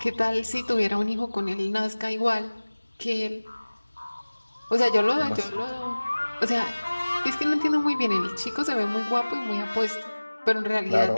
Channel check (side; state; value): both; inverted; correlation -1.00